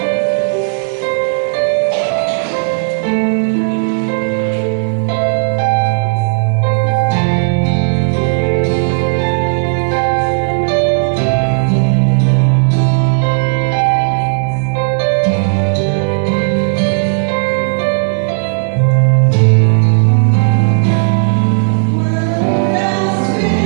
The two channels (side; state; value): left; silent; digital silence